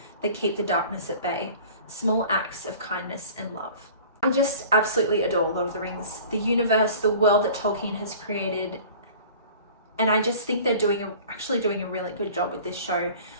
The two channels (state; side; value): inverted; both; correlation -0.44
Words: that keep the darkness at bay, small acts of kindness and love." I just absolutely adore Lord of the Rings, the universe, the world that Tolkien has created, and I just think they're actually doing a really good job with this show